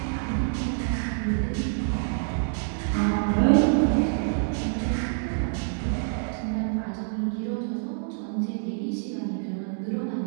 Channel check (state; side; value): silent; left; digital silence